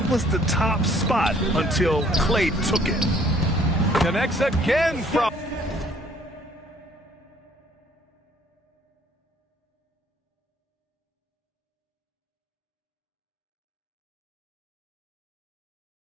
was the top spot until Clay took it. Connects again from...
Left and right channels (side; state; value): both; normal; correlation 0.60